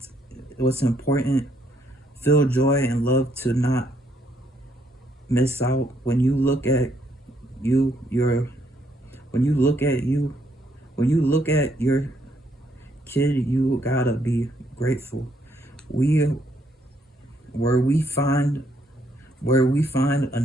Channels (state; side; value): normal; both; correlation 0.72